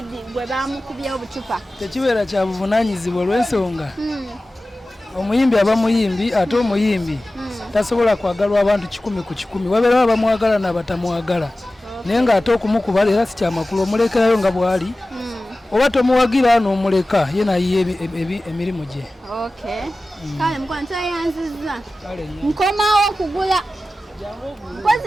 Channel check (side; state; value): both; normal; correlation 0.96